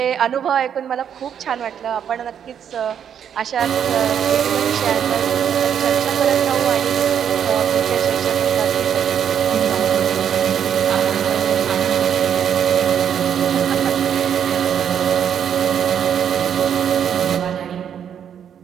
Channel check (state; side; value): quieter; left; 8.6 dB